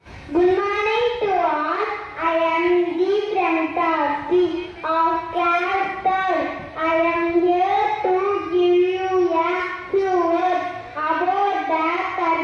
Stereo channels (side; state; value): both; identical; correlation 1.00